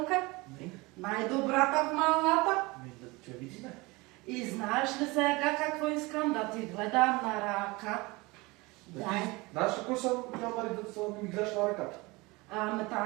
Не. Най-добрата в малата. Да те видиме. И знаеш ли сега какво искам да ти гледам на ръка? Дай. Знаеш ли кой съм, Мари, да ми гледаш на ръката? Ами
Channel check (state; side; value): quieter; left; 23.8 dB